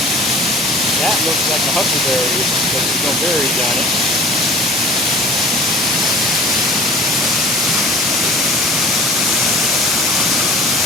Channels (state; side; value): normal; both; correlation 0.43